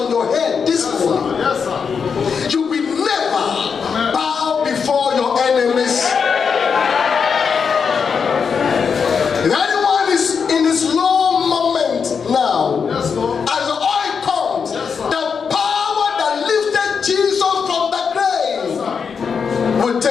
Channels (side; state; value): right; quieter; 6.1 dB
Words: your head this morning, you will never bow before your enemies. If anyone is in this low moment now, as the oil comes, the power that lifted Jesus from the grave will